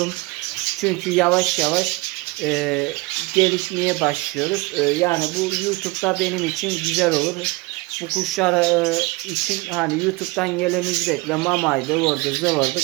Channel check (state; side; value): quieter; left; 23.0 dB